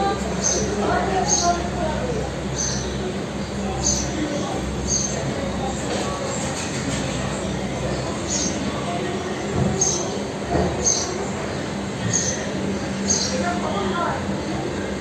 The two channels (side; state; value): both; identical; correlation 1.00